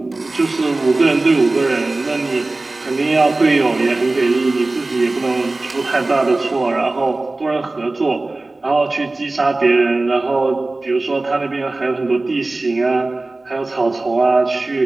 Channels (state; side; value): quieter; left; 3.1 dB